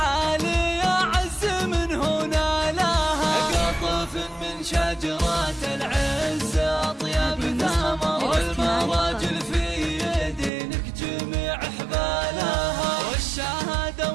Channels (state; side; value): drops out; left; at 10.5 s